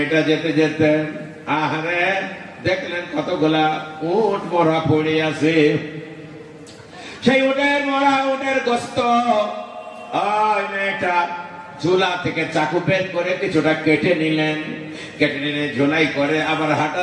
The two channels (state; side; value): identical; both; correlation 1.00